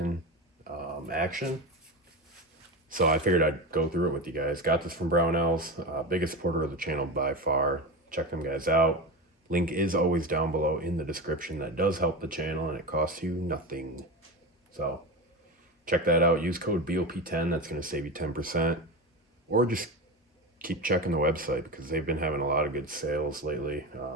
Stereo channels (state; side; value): normal; both; correlation 0.22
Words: Action. So I figured I'd go through it with you guys. Got this from Brownells, biggest supporter of the channel by far. Check them guys out. Link is always down below in the description. That does help the channel and it costs you nothing. So check that out. Use code BOP10. That's going to save you 10%. Or just keep checking the website because they've been having a lot of good sales lately.